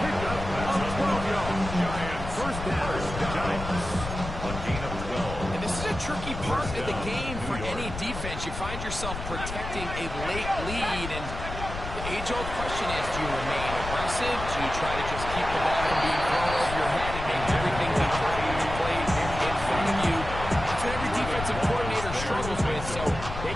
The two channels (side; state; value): left; noise; rumble, 8 dB below the sound